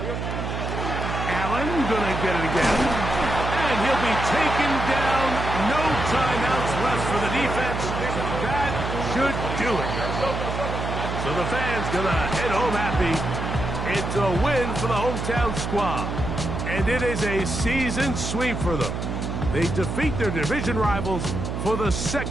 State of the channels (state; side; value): noise; right; hum, 4 dB below the sound